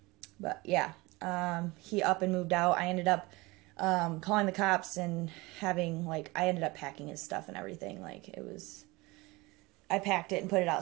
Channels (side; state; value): left; quieter; 23.0 dB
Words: But yeah, he up and moved out. I ended up calling the cops and having like, I ended up packing his stuff and everything. Like it was, I packed it and put it